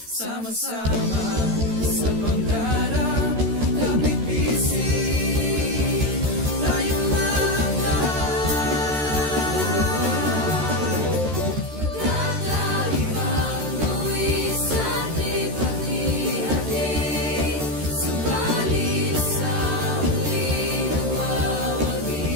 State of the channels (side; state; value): left; late; 13 ms